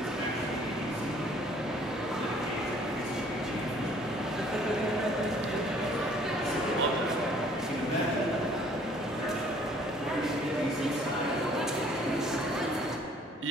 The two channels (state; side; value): normal; both; correlation 0.58